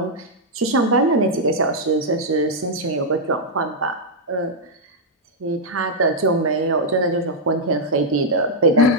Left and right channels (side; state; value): both; normal; correlation -0.06